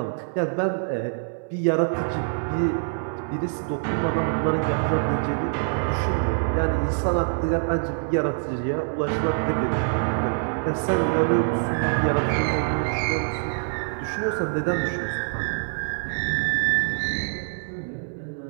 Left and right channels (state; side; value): silent; left; 60 dB below the other